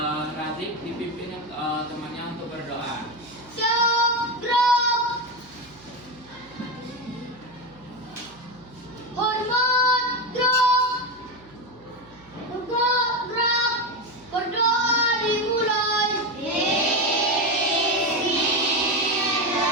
Razik dipimpin temannya untuk berdoa. Syukruk, hormat, gerak, tegak, gerak, berdoa dimulai.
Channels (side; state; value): right; noise; hum, 26 dB below the sound